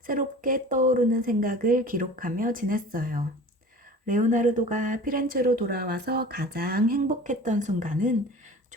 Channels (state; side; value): normal; both; correlation 0.40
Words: 새롭게 떠오르는 생각을 기록하며 지냈어요. 레오나르도가 피렌체로 돌아와서 가장 행복했던 순간은